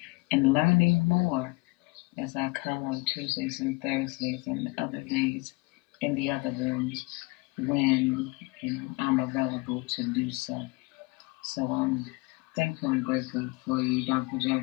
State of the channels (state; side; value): quieter; right; 25.8 dB